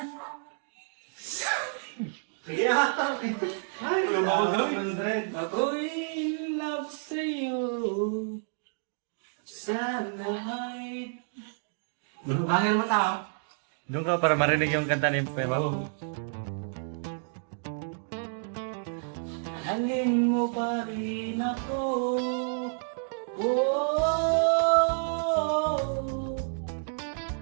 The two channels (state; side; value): silent; left; digital silence